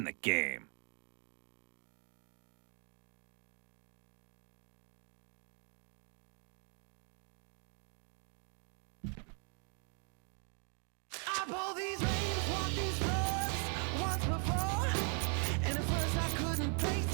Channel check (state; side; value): quieter; left; 38.2 dB